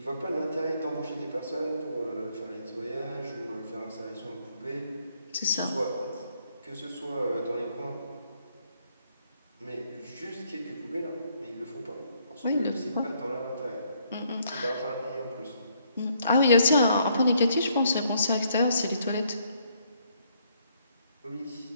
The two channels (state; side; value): inverted; both; correlation -0.69